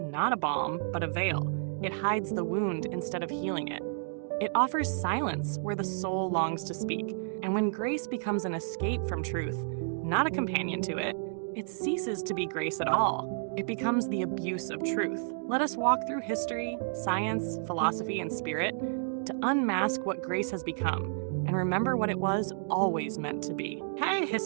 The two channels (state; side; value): silent; left; digital silence